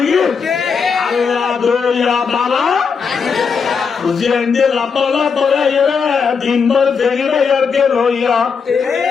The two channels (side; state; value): right; quieter; 5.8 dB